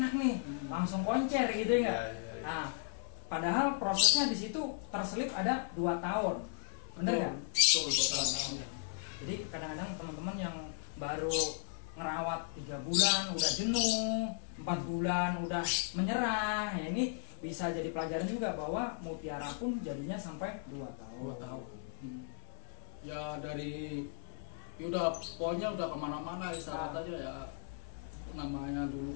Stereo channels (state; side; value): silent; right; digital silence